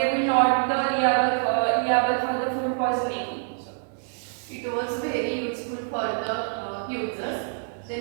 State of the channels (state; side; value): silent; left; digital silence